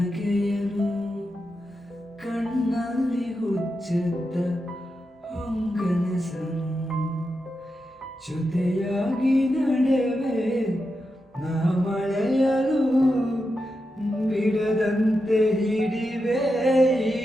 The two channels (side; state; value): both; normal; correlation 0.88